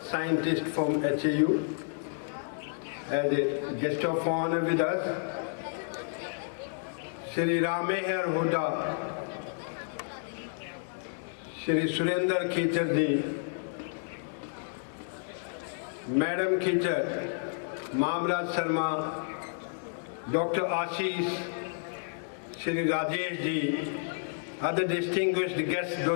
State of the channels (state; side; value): silent; right; digital silence